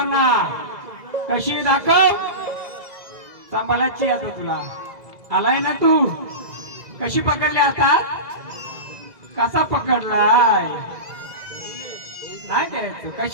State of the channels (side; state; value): left; late; 2.0 ms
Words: कशी दाखव सांभाळायची आता तुला आलाय ना तू कशी पकडली आता कसा पकडलाय नाही द्यायचं